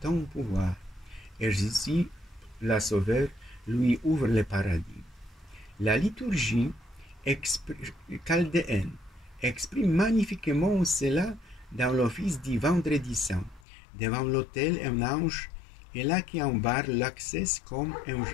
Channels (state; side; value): drops out; right; at 13.7 s